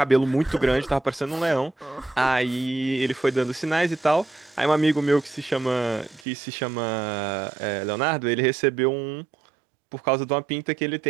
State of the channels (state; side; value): drops out; left; at 6.2 s